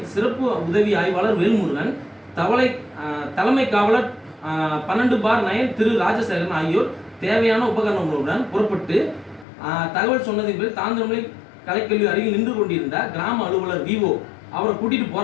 சிறப்பு உதவி ஆய்வாளர் வேல்முருகன், தலைமை காவலர் 12/9 திரு ராஜசேகரன் ஆகியோர் தேவையான உபகரணங்களுடன் புறப்பட்டு தகவல் சொன்னதின் பேர் தாந்தரமலை கலைக்கல்வி அருகில் நின்று கொண்டிருந்த கிராம அலுவலர் விஓ அவரை கூட்டிட்டு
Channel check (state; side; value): drops out; right; at 9.5 s